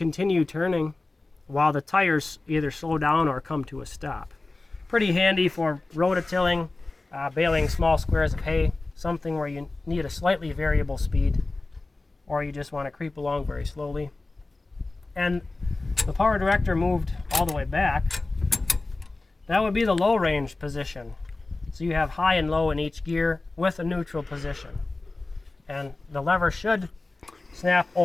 turning while the tires either slow down or come to a stop. Pretty handy for rototilling, baling small squares of hay, something where you need a slightly variable speed or you just want to creep along very slowly. And the power director moved all the way back. That would be the low range position. So you have high and low in each gear with a neutral position. And the lever should snap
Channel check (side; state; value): right; quieter; 3.3 dB